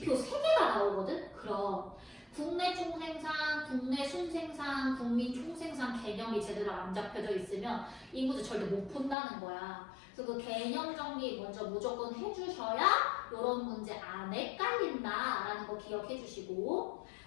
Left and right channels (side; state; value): right; drops out; at 9.2 s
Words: 3개가 나오거든? 그럼 국내 총생산, 국내 순생산, 국민 총생산 개념이 제대로 안 잡혀져 있으면 이 문제 절대 못 푼다는 거야. 그래서 그 개념 정리 먼저 무조건 해주셔야 이런 문제 안 헷갈린다라는 거 기억해 주시고